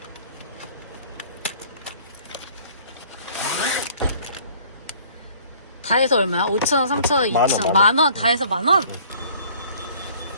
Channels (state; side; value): inverted; both; correlation -0.54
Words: 다 해서 얼마야? 5,000원, 3,000원, 2,000원, 만원. 다 해서 만원?